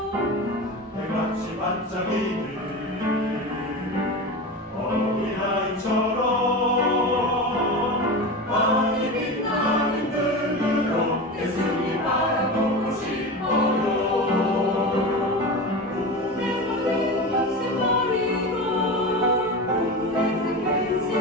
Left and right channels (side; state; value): both; normal; correlation 0.26